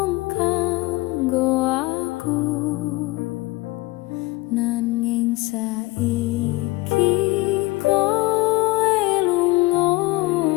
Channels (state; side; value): quieter; right; 21.8 dB